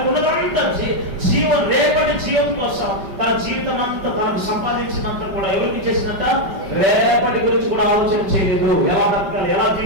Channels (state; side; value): late; left; 5.2 ms